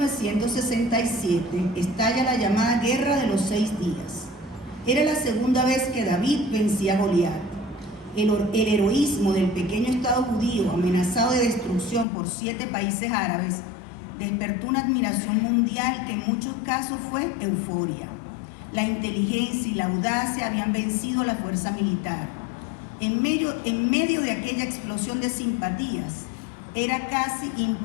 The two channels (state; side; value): drops out; right; at 12.1 s